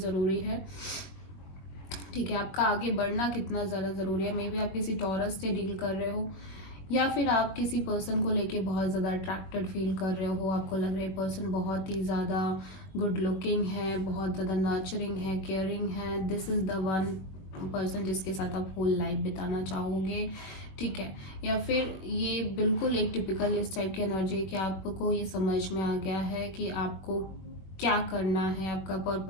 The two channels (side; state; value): right; late; 21 ms